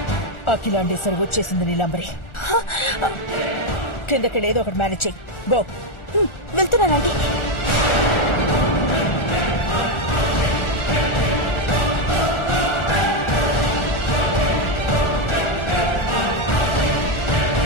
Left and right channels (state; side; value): late; right; 1.4 ms